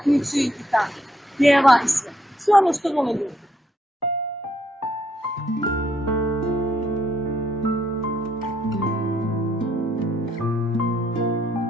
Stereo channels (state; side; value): normal; both; correlation 0.72